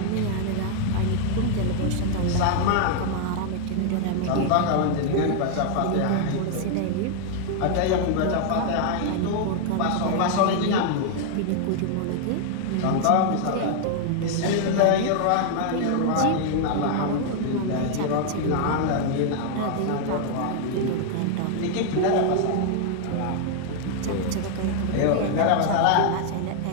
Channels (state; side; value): different; both; correlation 0.00